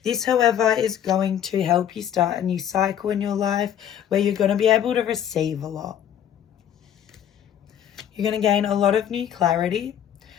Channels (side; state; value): right; quieter; 9.9 dB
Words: This, however, is going to help you start a new cycle in your life where you're going to be able to receive a lot. You're going to gain a lot of new clarity